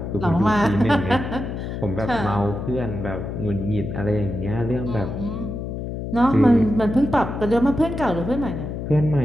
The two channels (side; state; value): left; noise; hum, 6 dB below the sound